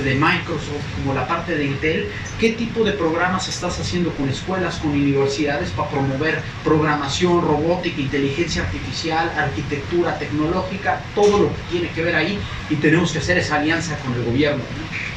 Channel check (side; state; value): both; identical; correlation 1.00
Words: de Microsoft, como la parte de Intel, qué tipo de programas estás haciendo con escuelas, con universidades para promover programación, robótica, inteligencia artificial, arquitectura tecnológica, todo lo que tiene que ver ahí, y tenemos que hacer esa alianza con el gobierno,